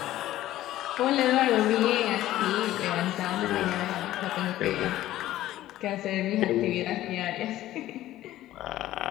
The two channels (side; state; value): right; quieter; 14.4 dB